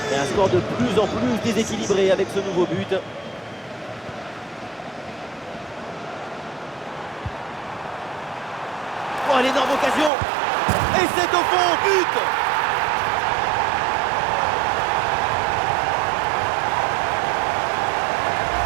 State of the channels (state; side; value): drops out; left; at 10.1 s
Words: Et un score de plus en plus déséquilibré avec ce nouveau but. Oh, l'énorme occasion! Et c'est au fond, but!